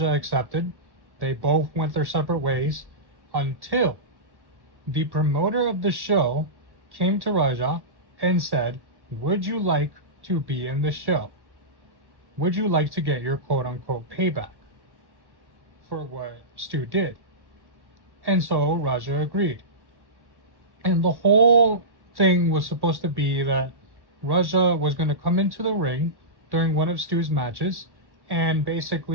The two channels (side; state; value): left; late; 1.1 ms